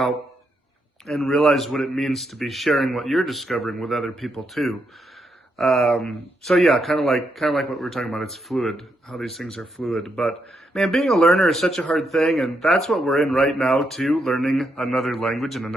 and realize what it means to be sharing what you're discovering with other people too. So yeah, kind of like what we were talking about. It's fluid, how these things are fluid. But man, being a learner is such a hard thing, and that's what we're in right now too, learning another language and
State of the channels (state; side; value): normal; both; correlation 0.80